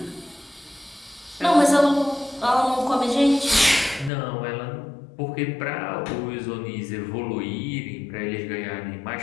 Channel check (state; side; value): drops out; right; at 4.1 s